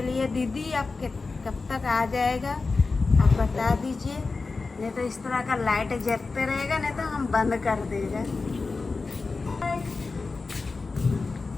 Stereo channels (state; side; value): quieter; right; 4.0 dB